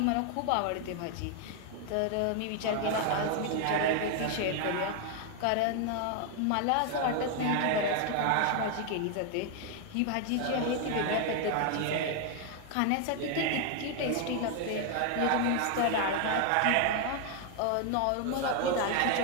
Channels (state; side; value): different; both; correlation 0.01